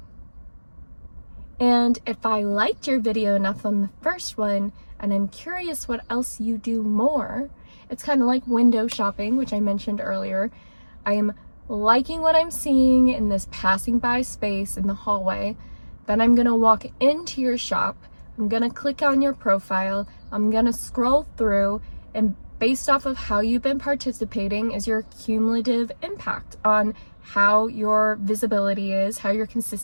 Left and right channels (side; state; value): both; inverted; correlation -1.00